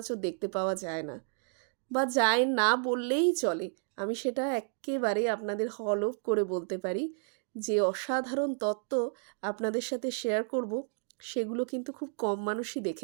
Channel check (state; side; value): silent; left; 55 dB below the other